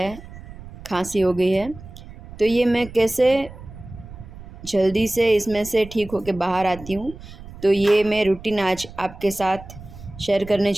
खांसी हो गई है। तो ये मैं कैसे जल्दी से इसमें से ठीक होकर बाहर आती हूँ, तो ये मैं रूटीन आज आपके साथ शेयर करने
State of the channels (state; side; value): noise; right; rumble, 16 dB below the sound